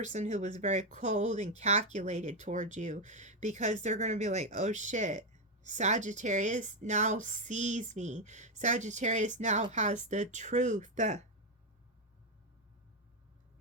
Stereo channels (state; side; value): normal; both; correlation 0.05